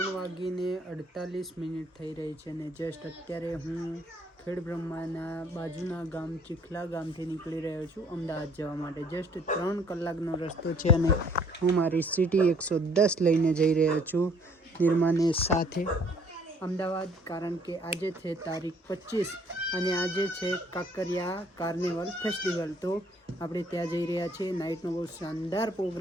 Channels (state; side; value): normal; both; correlation 0.60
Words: થઈ રહી છે ને જસ્ટ અત્યારે હું ખેડબ્રહ્માના બાજુના ગામ ચીખલા ગામથી નીકળી રહ્યો છું અમદાવાદ જવા માટે. જસ્ટ 3 કલાકનો રસ્તો છે અને હું મારી સિટી 110 લઈને જઈ રહ્યો છું નિર્માને સાથે અમદાવાદ, કારણ કે આજે છે તારીખ 25 અને આજે છે કાંકરિયા કાર્નિવલ ફેસ્ટિવલ. તો આપણે ત્યાં જઈ રહ્યા છીએ. નાઇટનો બહુ શાનદાર